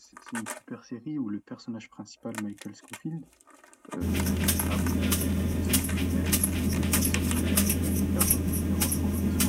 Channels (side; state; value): both; identical; correlation 1.00